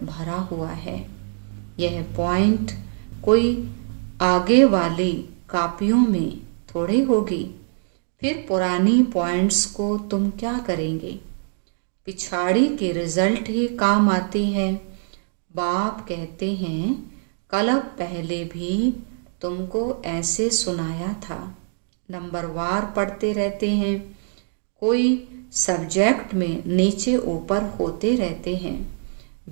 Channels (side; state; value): left; silent; digital silence